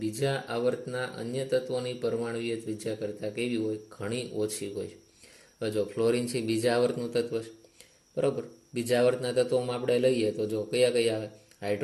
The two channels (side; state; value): both; identical; correlation 1.00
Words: બીજા આવર્તના અન્ય તત્વોની પરમાણુય ત્રિજ્યા કરતાં કેવી હોય? ઘણી ઓછી હોય. હવે જો ફ્લોરિન છે બીજા આવર્તનું તત્વ છે, બરાબર. બીજા આવર્તના તત્વોમાં આપણે લઈએ તો જો કયા કયા આવે?